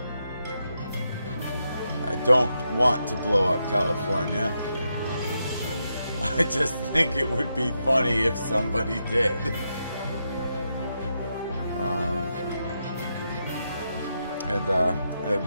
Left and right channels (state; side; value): inverted; both; correlation -0.83